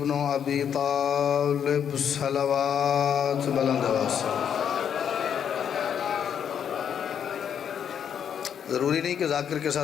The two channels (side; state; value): right; quieter; 8.3 dB